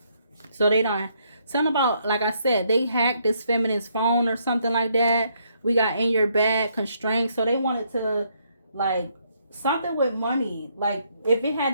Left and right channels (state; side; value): inverted; both; correlation -0.72